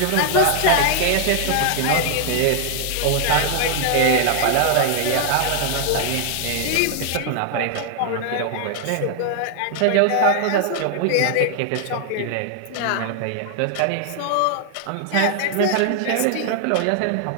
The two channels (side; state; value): both; different; correlation 0.00